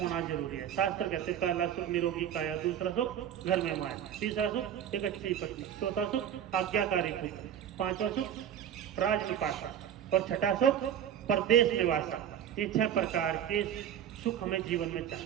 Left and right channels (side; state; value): left; quieter; 9.7 dB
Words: जरूरी है। शास्त्र कहते पहला सुख निरोगी काया, दूसरा सुख घर में माया, तीसरा सुख एक अच्छी पत्नी, चौथा सुख आज्ञाकारी पुत्र, 5वां सुख राज निपासा और 6ठा सुख परदेश में वासा। ये 6 प्रकार के सुख हमें जीवन में